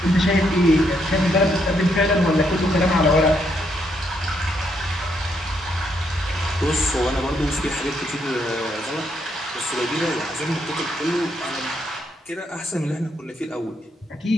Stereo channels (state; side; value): normal; both; correlation 0.75